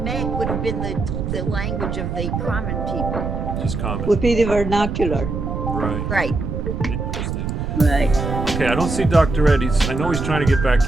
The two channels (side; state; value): right; noise; rumble, 3 dB below the sound